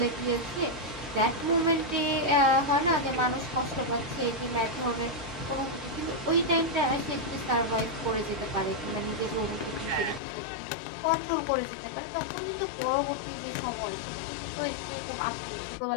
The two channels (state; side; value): drops out; right; at 10.2 s